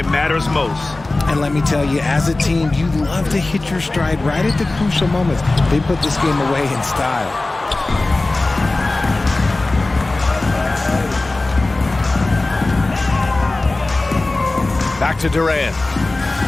matters most. And let me tell you, as a team, you love to hit your stride right at the crucial moments. They put this game away in style. Back to Durant.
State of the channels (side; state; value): right; quieter; 3.0 dB